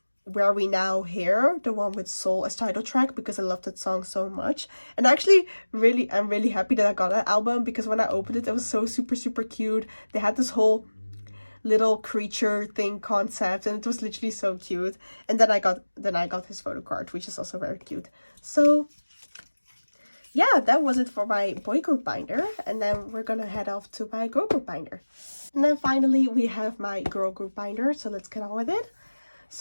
Where We Now Here, the one with Soul as title track, because I love that song so much. And actually, I'm really happy that I got that album, because when I opened it, it was so super cute. They had this whole little creature thing concept, and it was literally so cute. And then I got his photo card, which is also very cute. So yeah, that was it for my boy group binder, and then we're gonna head off to my girl group binder. And then finally we have my girl group binder, so let's get on with it.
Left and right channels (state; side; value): inverted; both; correlation -1.00